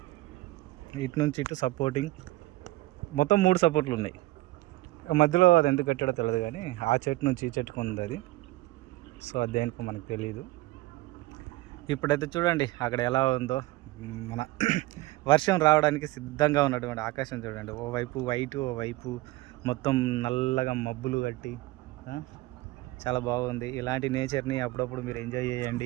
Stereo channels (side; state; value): left; quieter; 19.4 dB